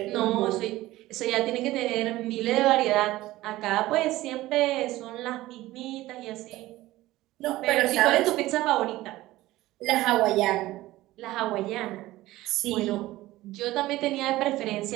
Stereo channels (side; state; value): left; quieter; 17.1 dB